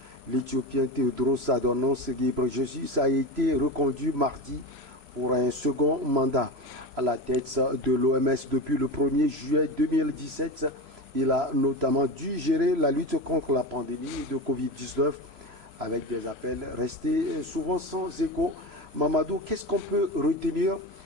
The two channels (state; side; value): late; left; 3.0 ms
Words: l'Éthiopien Tedros Adhanom Ghebreyesus a été reconduit mardi pour un second mandat. À la tête de l'OMS depuis le 1er juillet 2017, il a notamment dû gérer la lutte contre la pandémie de Covid-19 avec des appels restés souvent sans écho. Mamadou, qu'est-ce qu'on peut retenir